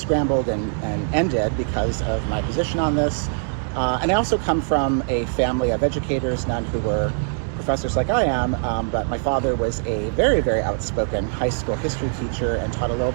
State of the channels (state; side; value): silent; left; digital silence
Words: and ended because of my position on this. And I also come from a family of educators, none who were professors like I am, but my father was a very, very outspoken high school history teacher and taught a little